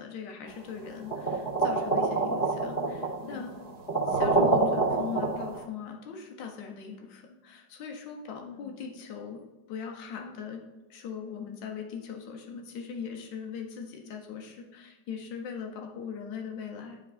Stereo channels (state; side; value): late; right; 4.8 ms